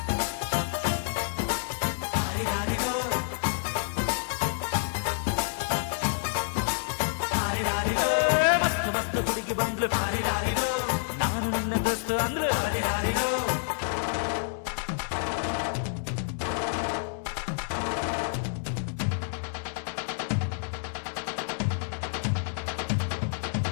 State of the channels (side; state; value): right; silent; digital silence